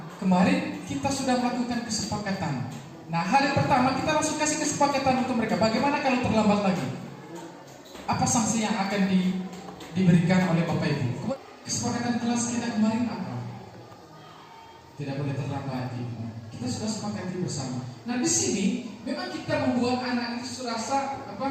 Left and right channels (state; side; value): identical; both; correlation 1.00